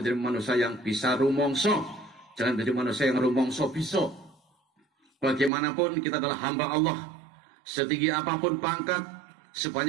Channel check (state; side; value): drops out; left; at 5.5 s